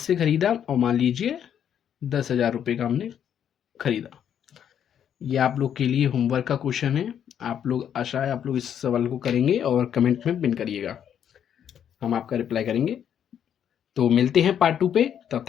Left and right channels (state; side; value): quieter; right; 9.1 dB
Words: खरीदा और मान लीजिए 10,000 रुपये का हमने खरीदा। ये आप लोग के लिए होमवर्क का क्वेश्चन है। आप लोग, आशा है आप लोग इस सवाल को करेंगे और कमेंट में पिन करिएगा, हम आपका रिप्लाई करेंगे। तो मिलते हैं पार्ट 2 पे, तब